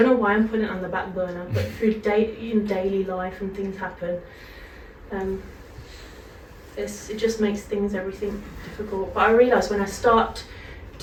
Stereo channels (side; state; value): both; identical; correlation 1.00